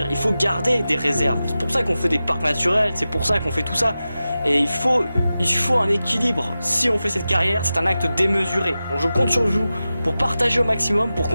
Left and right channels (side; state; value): both; inverted; correlation -0.94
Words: il faut garder des réserves. C'est pour ça qu'on fait des parcs naturels, c'est pour ça qu'on fait tout ça. Et il faut un équilibre. Si on fait cette carrière, c'est un acte démesuré. Donc je compte sur vous pour partager au maximum, pour